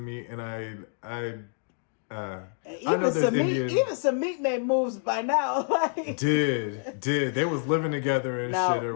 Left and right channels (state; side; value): silent; right; digital silence